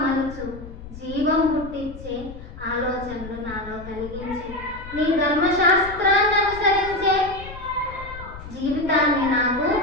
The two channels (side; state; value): left; noise; rumble, 14 dB below the sound